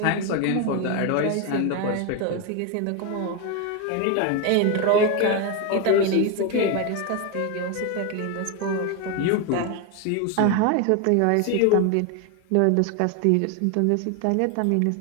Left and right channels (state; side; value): different; both; correlation 0.02